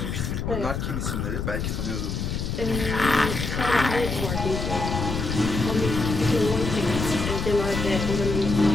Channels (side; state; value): left; noise; rumble, 3 dB below the sound